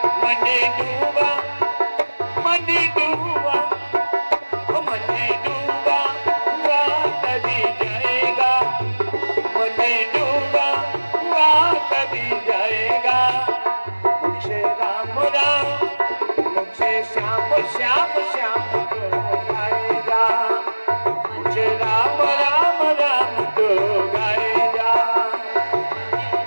मनी डूबा मनी डूबा मनी डूबा हुआ तरी जाएगा, मनी डूबा हुआ तरी जाएगा, मुझसे राम राम मुझसे श्याम श्याम श्याम तो गाएगा, मुझे राम राम राम तो गाएगा।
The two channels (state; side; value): inverted; both; correlation -1.00